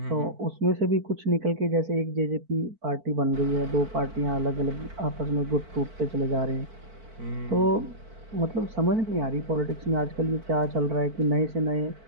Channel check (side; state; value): left; late; 4.5 ms